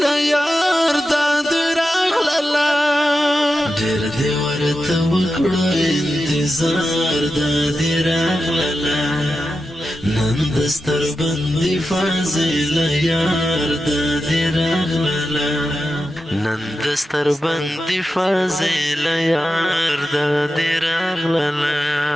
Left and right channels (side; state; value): both; normal; correlation 0.90